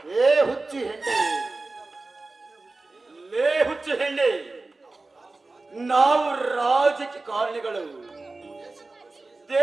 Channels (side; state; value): left; quieter; 3.4 dB